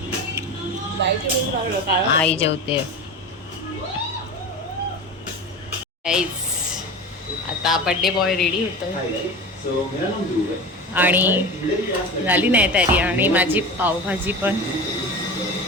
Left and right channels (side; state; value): both; normal; correlation 0.30